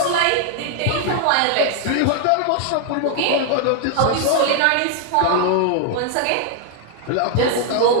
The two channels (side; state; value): both; different; correlation 0.00